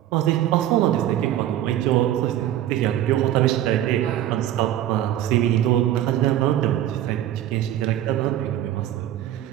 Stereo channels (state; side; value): quieter; left; 12.3 dB